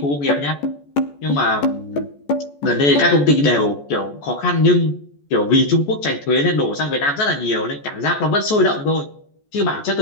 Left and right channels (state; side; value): late; right; 14 ms